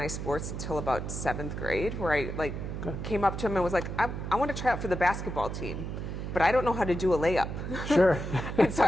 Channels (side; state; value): right; noise; hum, 5 dB below the sound